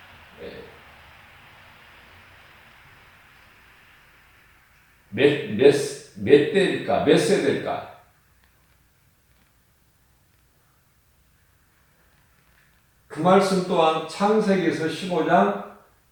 몇 대일까? 몇 세대일까? 그 말씀 또한 창세기에서 15장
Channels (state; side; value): identical; both; correlation 1.00